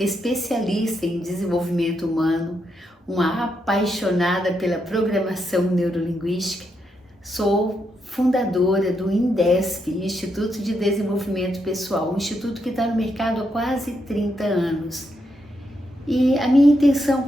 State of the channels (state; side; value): normal; both; correlation 0.81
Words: em desenvolvimento humano, uma apaixonada pela programação neurolinguística. Sou fundadora do INDESP, Instituto de Desenvolvimento Pessoal, um instituto que está no mercado há quase 30 anos. E a minha intenção